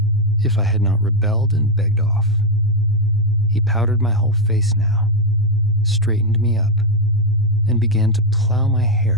if I had not rebelled and begged off. He powdered my whole face now, straightened me up, and began to plow my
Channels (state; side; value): normal; both; correlation 0.04